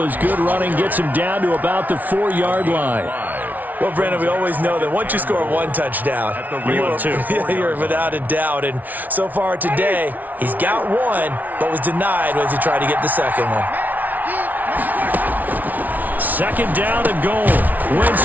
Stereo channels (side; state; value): left; late; 0.078 ms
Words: as good running gets them down to about the 4-yard line. Well, Brandon, we always know that once you score one touchdown, you're without a doubt. And so far today, he's got one, but was denied as he tried to get the second one. Second down and goal.